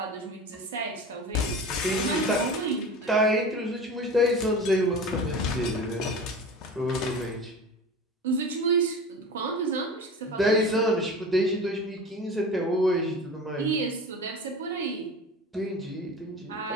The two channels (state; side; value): normal; both; correlation 0.34